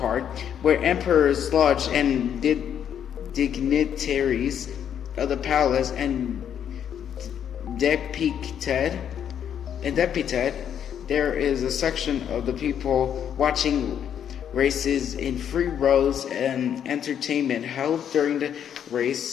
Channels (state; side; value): quieter; right; 9.0 dB